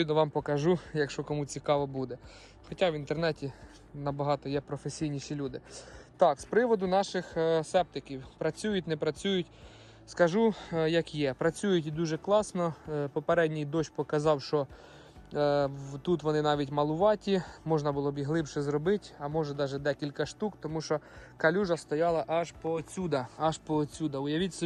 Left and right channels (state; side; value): identical; both; correlation 1.00